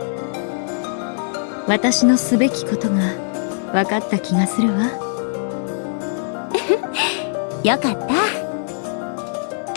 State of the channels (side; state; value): right; silent; digital silence